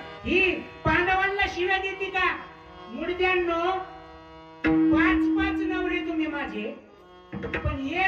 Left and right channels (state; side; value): identical; both; correlation 1.00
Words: ही पांडवांना शिव्या देते का? मुडद्यांनो, 5 नवरे तुम्ही माझे, पण